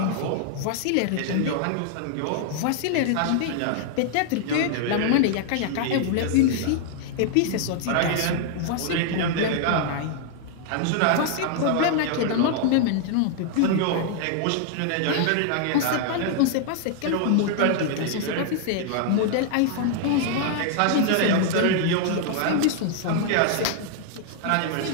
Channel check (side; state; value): both; different; correlation 0.00